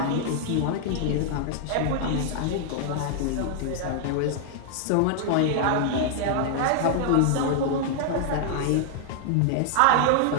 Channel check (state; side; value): different; both; correlation 0.00